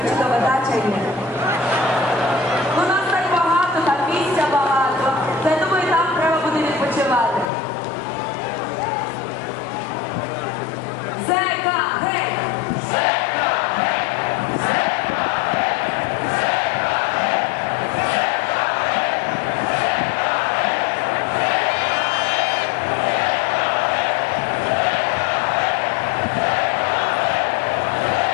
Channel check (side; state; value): right; drops out; at 7.5 s